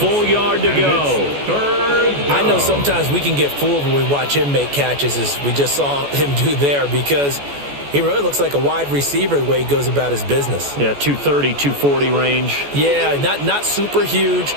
yard to go. I know sometimes we can get fooled when we watch him make catches, as we just saw him do there, because he really looks like a wide receiver the way he goes about his business. Yeah, 230, 240 range. Yeah, not super huge.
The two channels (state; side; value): late; left; 14 ms